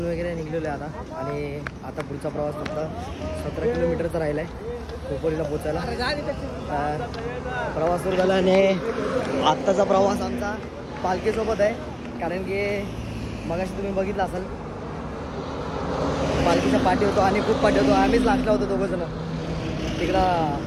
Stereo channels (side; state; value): both; identical; correlation 1.00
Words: वगैरे निघलेलं आहे आता. आणि आता पुढचा प्रवास फक्त 17 किलोमीटरचा राहिला आहे खोपोलीला पोचायला. प्रवास सुरू झाला आणि आत्ताचा प्रवास आमचा पालखीसोबत आहे. कारण की मगाशी तुम्ही बघितलं असाल पालखीच्या पाठी होतो आणि खूप पाठी होतो. आम्हीच लास्टला होतो दोघंजण. तिकडं